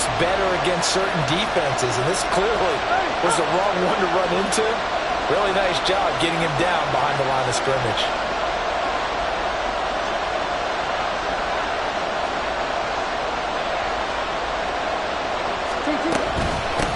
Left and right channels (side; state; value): both; identical; correlation 1.00